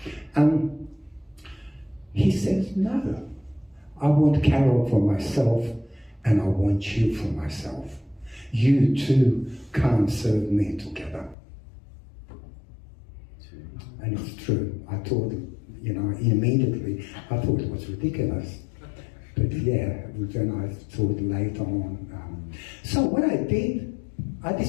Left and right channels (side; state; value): right; drops out; at 11.4 s